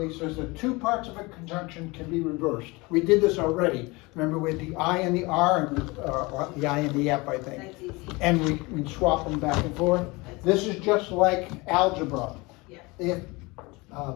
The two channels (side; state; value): right; quieter; 24.5 dB